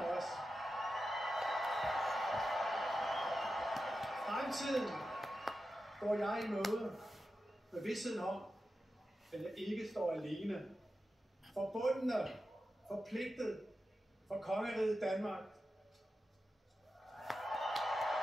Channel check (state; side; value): normal; both; correlation 0.91